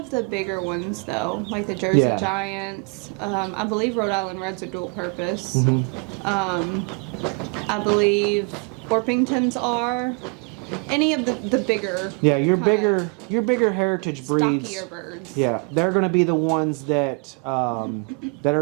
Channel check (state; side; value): quieter; left; 35.7 dB